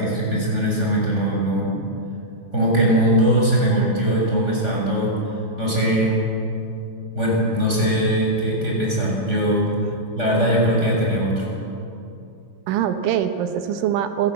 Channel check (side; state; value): left; late; 3.5 ms